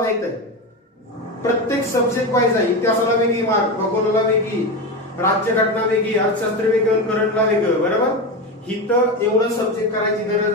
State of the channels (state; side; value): normal; both; correlation 0.18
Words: आहे. प्रत्येक सब्जेक्ट वाईज आहे. इतिहासाला वेगळी मार्क, भूगोलाला वेगळी, राज्यघटना वेगळी, अर्थशास्त्र वेगळं, करंटला वेगळं. बरोबर. इथं एवढं सब्जेक्ट करायची